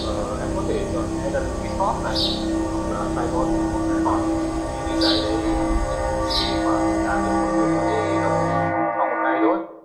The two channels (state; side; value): identical; both; correlation 1.00